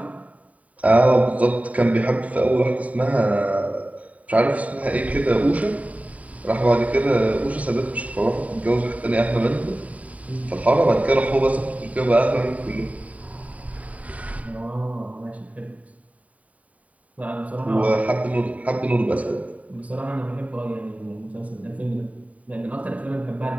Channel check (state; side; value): late; left; 0.069 ms